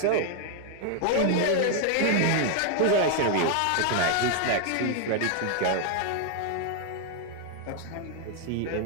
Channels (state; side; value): different; both; correlation 0.00